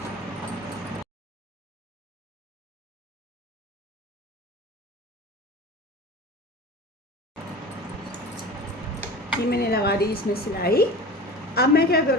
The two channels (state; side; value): normal; both; correlation 0.35